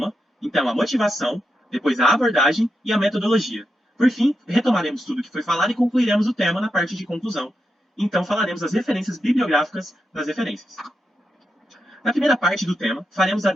então a motivação, depois a abordagem e a metodologia. Por fim, retomaremos tudo o que foi falado e concluiremos o tema na parte de conclusão. Então falaremos as referências bibliográficas das referências. Na primeira parte do tema, faremos a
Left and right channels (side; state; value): both; normal; correlation 0.86